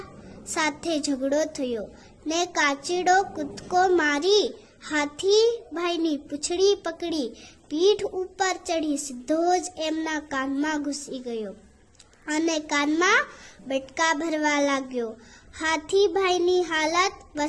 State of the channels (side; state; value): both; identical; correlation 1.00